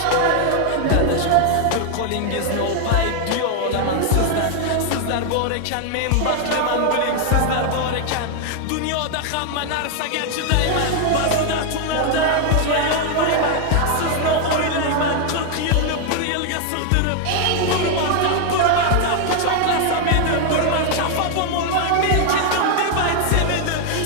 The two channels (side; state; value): both; different; correlation 0.00